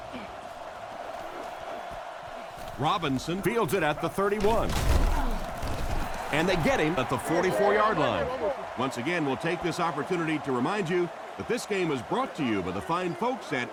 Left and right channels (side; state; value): both; identical; correlation 1.00